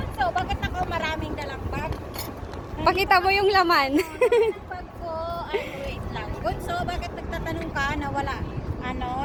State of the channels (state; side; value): identical; both; correlation 1.00